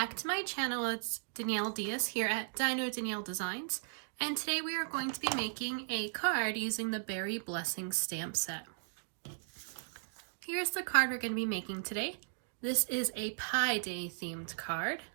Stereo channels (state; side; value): silent; left; digital silence